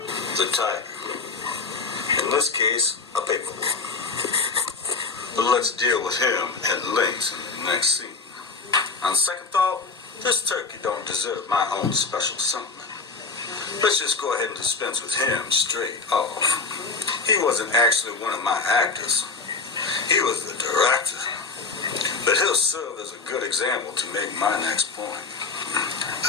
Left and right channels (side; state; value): right; quieter; 4.2 dB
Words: The tiger. In this case, a big one. But let's deal with him at length in the next scene. On second thought, this turkey don't deserve my own special sentiment. Let's just go ahead and dispense with him straight off. He wasn't actually one of my actors. He was the director. But he'll serve as a good example to make my next point.